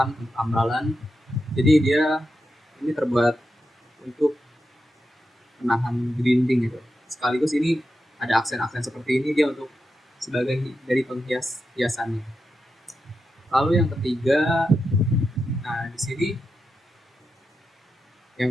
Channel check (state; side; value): normal; both; correlation 0.88